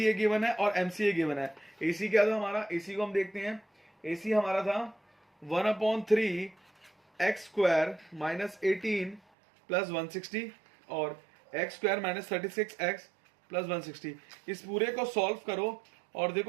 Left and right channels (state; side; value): drops out; left; at 9.2 s